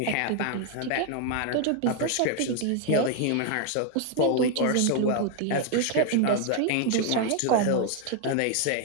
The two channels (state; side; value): different; both; correlation 0.00